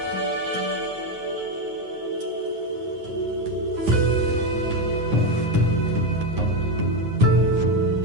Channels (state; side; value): late; left; 9.7 ms